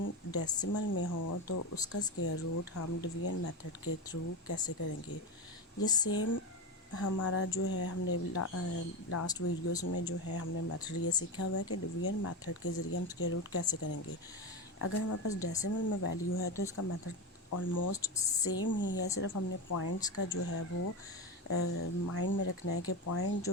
डेसिमल में हो तो उसका स्क्वायर रूट हम डिवीजन मेथड के थ्रू कैसे करेंगे। ये सेम हमारा जो है हमने लास्ट वीडियोस में जो है हमने मेथड ये सीखा हुआ है कि डिवीजन मेथड के ज़रिए हम स्क्वायर रूट कैसे करेंगे। अगर हमारे पास डेसिमल में वैल्यू है तो इसका मेथड ऑलमोस्ट सेम ही है, सिर्फ हमने पॉइंट्स का जो है वो माइंड में रखना है कि पॉइंट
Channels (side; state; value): both; normal; correlation 0.18